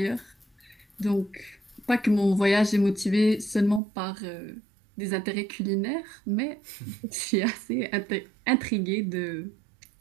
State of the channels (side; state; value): left; drops out; at 3.8 s